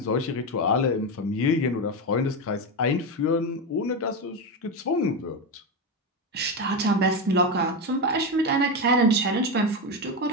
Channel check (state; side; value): normal; both; correlation 0.13